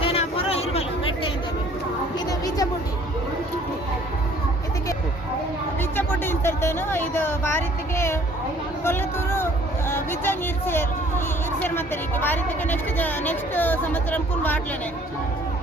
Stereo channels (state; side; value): normal; both; correlation 0.56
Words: నేను ఆ పొర ఇరువలు పెట్టే ಇದು ಬೀಜ ಬುಡ್ಡಿ ಇದಕ್ಕೆ ಇದೇನು ಇದು ಬಾರಿತಿಗೆ ಕೊಲ್ಲತೂರು ಬಿಜ್ಜಂಗ್ ಇರ್ಸೇರ್ ಮತ್ತೆ ಬಾರಿತಿಗೆ ನೆಕ್ಸ್ಟ್ ಸಂವత్సరం ಕುನ್ ಬಾಟ್ಲೇನೆ